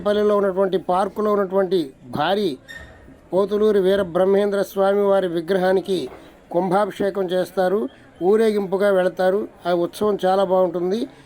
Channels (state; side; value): identical; both; correlation 1.00